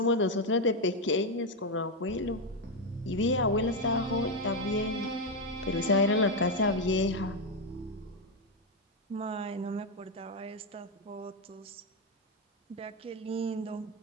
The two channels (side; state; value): both; normal; correlation 0.06